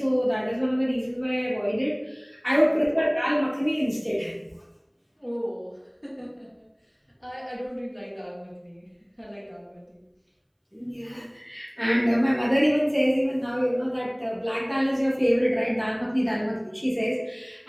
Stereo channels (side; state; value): both; identical; correlation 1.00